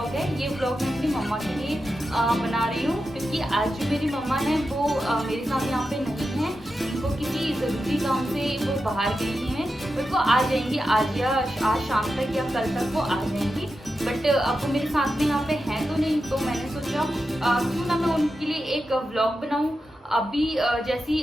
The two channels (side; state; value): both; normal; correlation 0.90